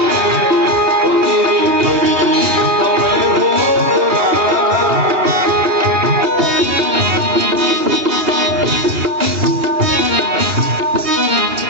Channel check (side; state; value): left; late; 2.9 ms